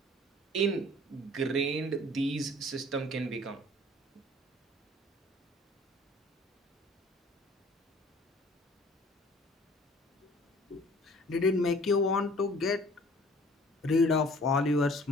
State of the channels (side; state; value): both; normal; correlation 0.52